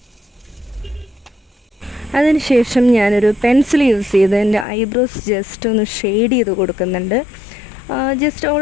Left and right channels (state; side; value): drops out; right; at 4.7 s